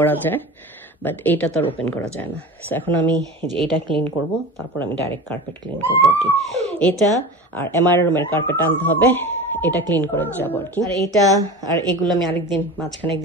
যায়, বাট এইটা তো আর ওপেন করা যায় না। সো এখন আমি যে এইটা ক্লিন করব, তারপর আমি ডাইরেক্ট কার্পেট ক্লিন করবো আর কি। এটা আর এমআর রুমের কার্পেট আনতে হবে, এটা ক্লিন করে যাবো আর কি। আর এইটা আর এগুলো আমি আরেকদিন মাঝখানে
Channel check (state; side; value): normal; both; correlation 0.33